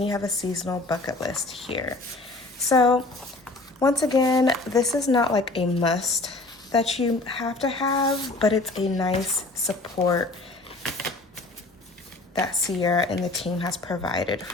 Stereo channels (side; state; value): right; quieter; 3.1 dB